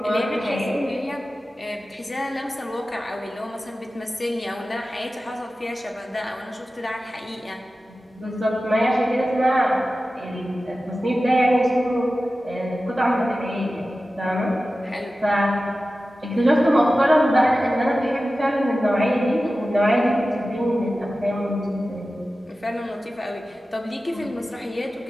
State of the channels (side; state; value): both; normal; correlation 0.95